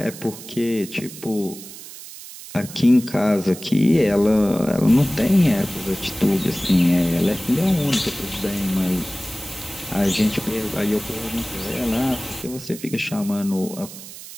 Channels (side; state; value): right; noise; hiss, 14 dB below the sound